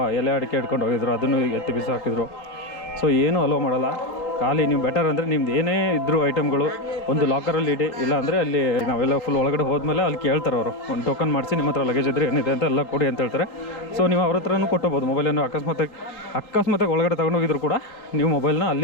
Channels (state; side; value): late; right; 3.7 ms